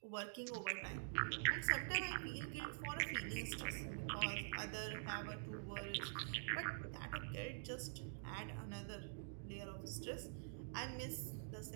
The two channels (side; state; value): left; silent; digital silence